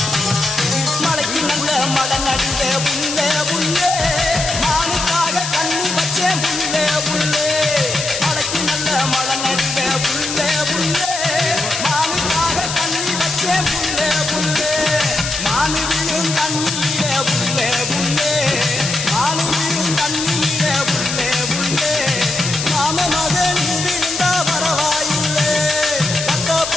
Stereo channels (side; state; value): left; noise; hiss, 4 dB below the sound